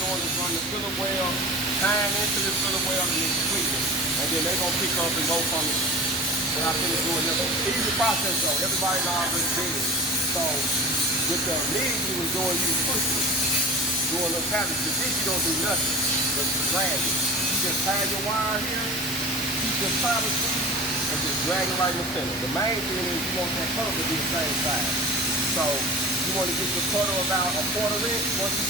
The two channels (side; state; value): both; normal; correlation 0.35